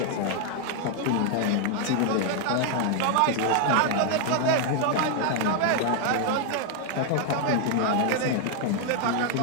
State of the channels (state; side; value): different; both; correlation 0.00